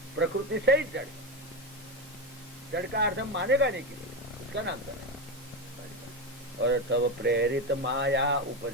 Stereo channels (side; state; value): both; normal; correlation 0.15